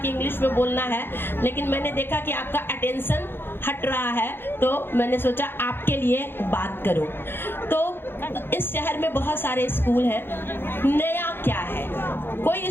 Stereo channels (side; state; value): right; late; 0.10 ms